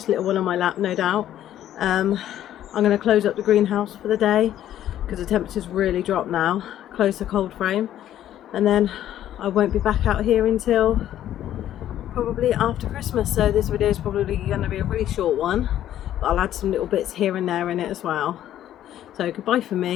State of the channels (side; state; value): right; quieter; 11.8 dB